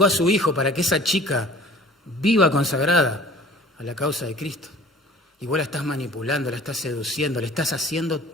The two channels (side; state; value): both; normal; correlation 0.48